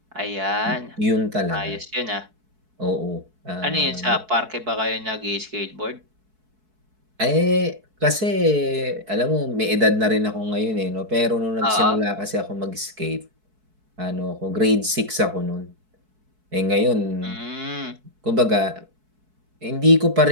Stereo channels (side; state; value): left; late; 4.6 ms